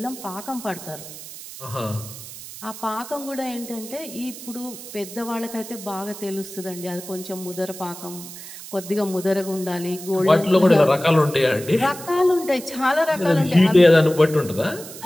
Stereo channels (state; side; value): noise; right; hiss, 13 dB below the sound